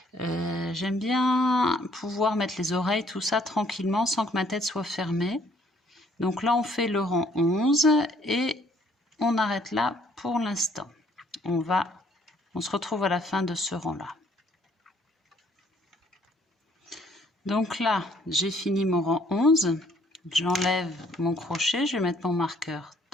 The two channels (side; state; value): both; normal; correlation 0.63